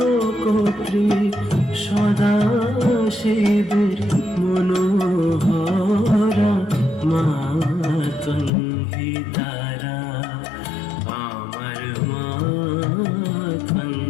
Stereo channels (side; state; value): right; drops out; at 8.5 s